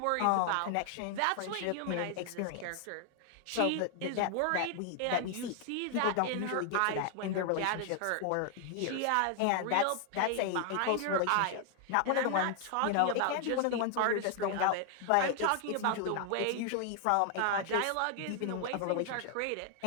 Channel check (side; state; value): both; different; correlation 0.00